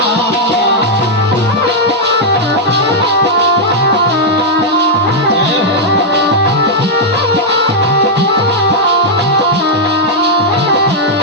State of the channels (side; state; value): both; normal; correlation -0.04